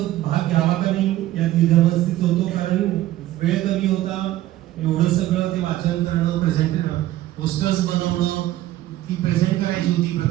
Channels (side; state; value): left; quieter; 14.5 dB